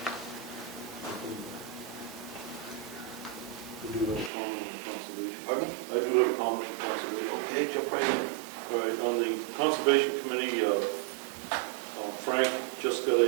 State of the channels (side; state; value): left; drops out; at 4.3 s